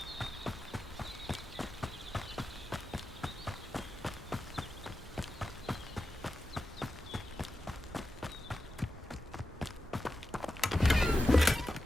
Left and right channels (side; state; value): both; normal; correlation 0.91